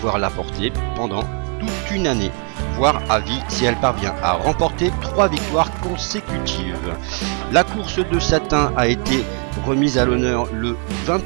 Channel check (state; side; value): quieter; left; 39.2 dB